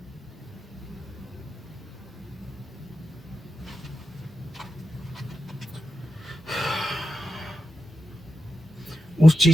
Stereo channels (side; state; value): both; normal; correlation 0.90